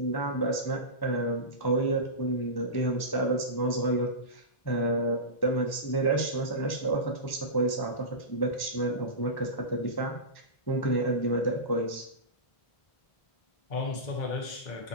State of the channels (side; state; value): right; late; 1.1 ms